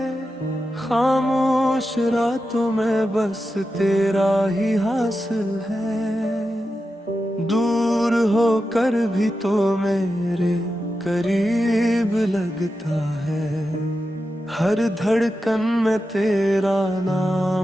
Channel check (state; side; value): normal; both; correlation 0.90